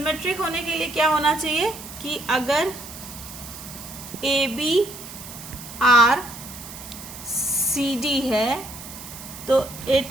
होने के लिए क्या होना चाहिए कि अगर A B R C D है तो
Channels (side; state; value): right; noise; hiss, 13 dB below the sound